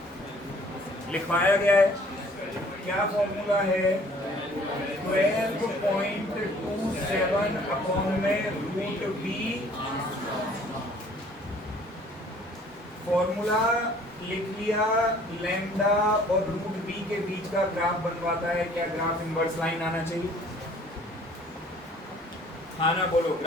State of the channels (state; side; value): normal; both; correlation 0.55